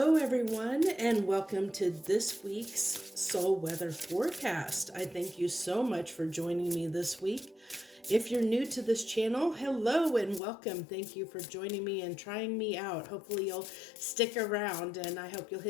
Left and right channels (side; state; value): right; drops out; at 10.4 s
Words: everyone, and welcome to this week's Soul Weather Forecast. I thank you so much for joining me this week. If you're new to this channel, hello and welcome. Thank you for joining me and trying me out. Hopefully you'll stick around, and I hope you'll